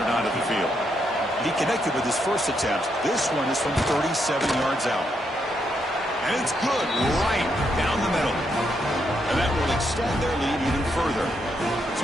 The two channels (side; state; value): both; normal; correlation 0.78